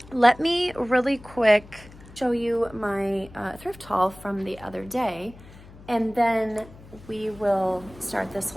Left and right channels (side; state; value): left; noise; hum, 20 dB below the sound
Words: Let me really quick show you my thrift haul from the other day, and then we will start this